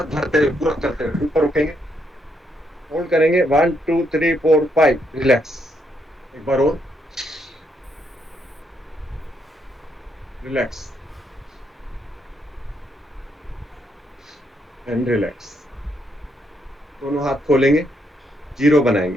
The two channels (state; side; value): normal; both; correlation 0.76